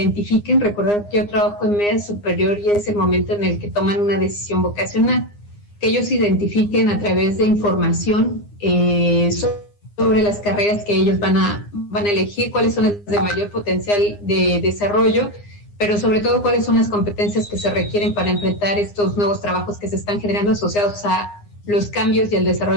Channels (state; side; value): late; right; 9.8 ms